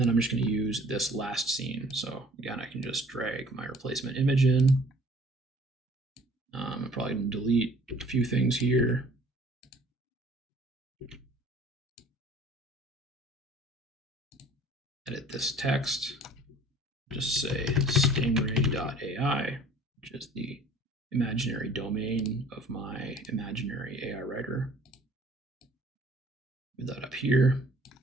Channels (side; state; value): both; normal; correlation 0.53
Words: I'm just going to use this last scene. So again, I can just drag my replacement image in. I'm probably going to delete a few things here. Edit this text. just say stingray.ai, which is the imaginary domain of my imaginary AI writer. Move that up here,